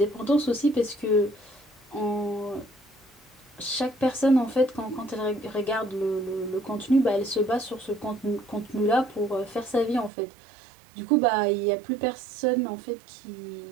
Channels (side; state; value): left; drops out; at 10.1 s